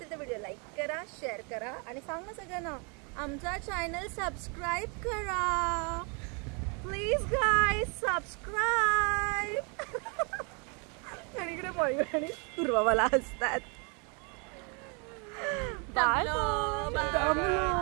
तर व्हिडिओ लाईक करा, शेअर करा आणि सांगा सगळ्यांना आमचा चॅनल सबस्क्राईब करा प्लीज गाईज, सबस्क्राईब। आणि इकडे मयूर आणि पूर्वा मला हसतात। Bye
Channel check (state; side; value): quieter; left; 34.6 dB